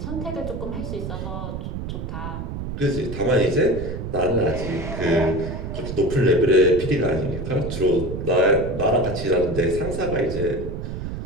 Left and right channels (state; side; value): noise; right; rumble, 6 dB below the sound